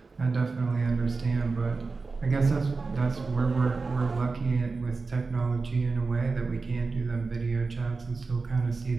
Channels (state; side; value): quieter; left; 4.1 dB